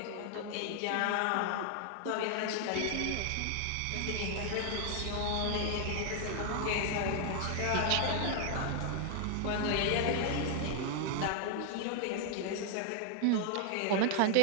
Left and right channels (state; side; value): different; both; correlation 0.00